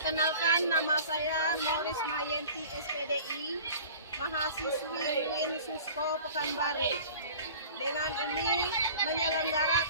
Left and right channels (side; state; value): both; inverted; correlation -0.43